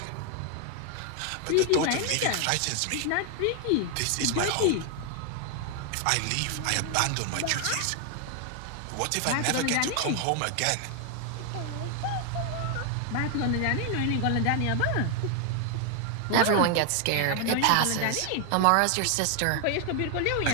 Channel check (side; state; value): both; different; correlation 0.00